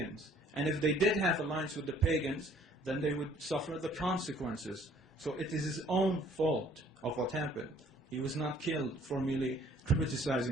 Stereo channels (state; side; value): normal; both; correlation 0.58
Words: And if they did have alliance with the pagans, then they would suffer the consequences. So it is his own fault of what happened. He was not killed for merely